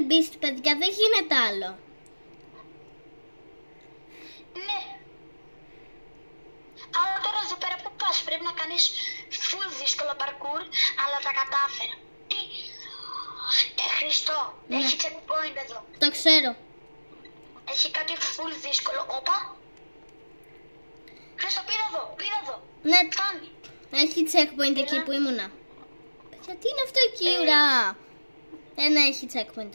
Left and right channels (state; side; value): inverted; both; correlation -1.00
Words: Beast, παιδιά, δεν γίνεται άλλο. Ναι. Αλλά τώρα εδώ πέρα που πας, πρέπει να κάνεις full δύσκολο parkour, αλλά τα κατάφερα. Τι? Χριστό, Ναι. έχει checkpoint εδώ. Το ξέρω. Έχει κάτι full δύσκολο. Όπα. Χρήστο, πήρα εδώ. Ναι, Φτάνει. έχει checkpoint εκεί που ήμουνα. Παιδιά, τι είναι αυτό εκεί, ουρά. Ναι, έχει checkpoint